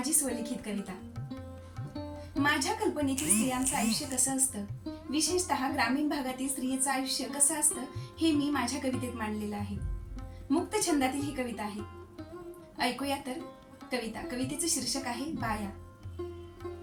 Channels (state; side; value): identical; both; correlation 1.00